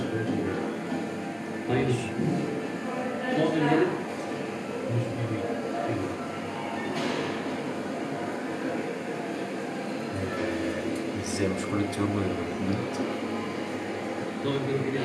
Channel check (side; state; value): both; identical; correlation 1.00